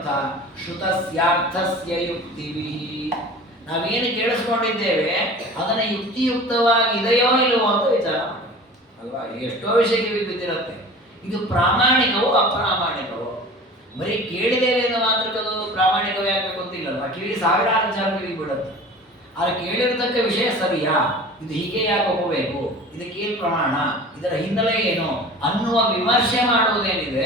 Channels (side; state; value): both; normal; correlation 0.40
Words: ಶ್ರುತಸ್ಯಾರ್ಥಸ್ಯ ಯುಕ್ತಿವಿ. ನಾವೇನು ಕೇಳಿಸ್ಕೊಂಡಿದ್ದೇವೆ ಅದನ್ನ ಯುಕ್ತಿಯುಕ್ತವಾಗಿ ಇದೆಯೋ ಇಲ್ಲವೋ ಅಂತ ವಿಚಾರ ಮಾಡಿ ಅಲ್ವಾ. ಎಷ್ಟೋ ವಿಷಯಕ್ಕೆ ಬಿದ್ದಿರುತ್ತೆ. ಇದು ಪ್ರಾಮಾಣಿಕವೋ ಅಪ್ರಾಮಾಣಿಕವೋ? ಬರೀ ಕೇಳಿದ್ದೇವೆ ಎಂದು ಮಾತ್ರಕ್ಕದು ಪ್ರಾಮಾಣಿಕವೇ ಆಗಬೇಕು ಅಂತಿಲ್ಲಲ್ವ. ಕಿವಿ ಸಾವಿರಾರು ವಿಚಾರ ಕಿವಿ ಬಿಡುತ್ತೆ. ಆದರೆ ಕೇಳಿರತಕ್ಕ ವಿಷಯ ಸರಿಯಾ, ಇದು ಹೀಗೆ ಯಾಕೆ ಹೋಗಬೇಕು, ಇದಕ್ಕೇನು ಪ್ರಮಾಣ, ಇದರ ಹಿನ್ನೆಲೆ ಏನು ಅನ್ನುವ ವಿಮರ್ಶೆ